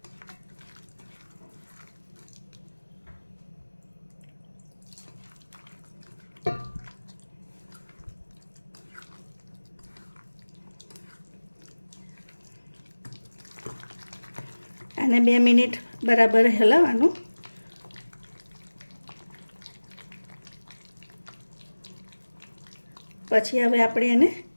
આને 2 મિનિટ બરાબર હલાવવાનું। પછી હવે આપણે એને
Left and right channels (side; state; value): both; inverted; correlation -1.00